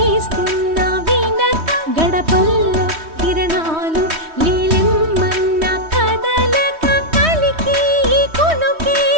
తీస్తున్న వీణక గడపల్లో కిరణాలు నీలిమ్మన్న కదలక కలికి ఈ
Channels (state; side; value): late; left; 3.1 ms